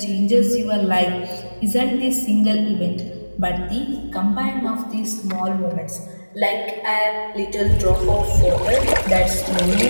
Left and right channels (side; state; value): both; inverted; correlation -1.00